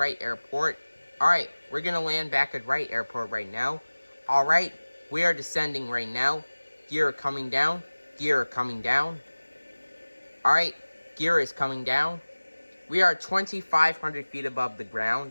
Airport. Alright, we're going to land back at Wright Airport right now. Alright, we are descending right now. Gear coming down. Gear coming down. Alright, gear is coming down. We are 2,500 feet above the ground.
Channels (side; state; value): both; inverted; correlation -1.00